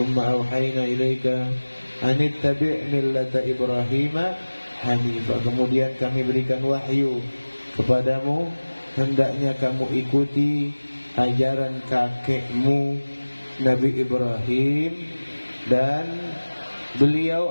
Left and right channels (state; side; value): inverted; both; correlation -1.00